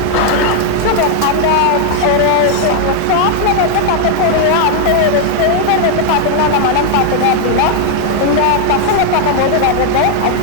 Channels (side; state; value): both; different; correlation 0.00